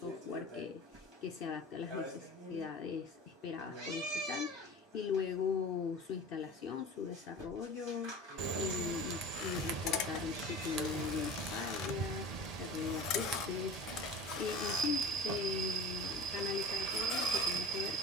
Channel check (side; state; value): both; normal; correlation 0.38